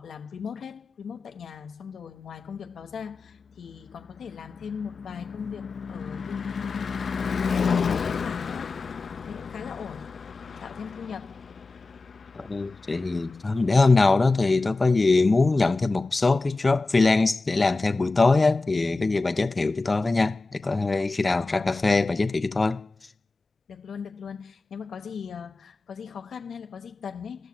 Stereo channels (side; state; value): right; quieter; 3.4 dB